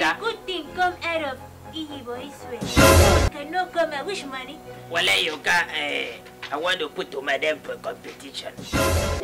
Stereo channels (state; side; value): identical; both; correlation 1.00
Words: Good thing come out of Boy's way. No, it cannot come out. Which money? Walay, you got I want to put to madam for competition.